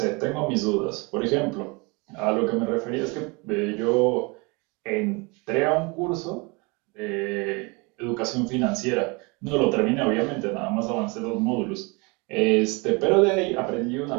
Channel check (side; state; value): left; quieter; 28.7 dB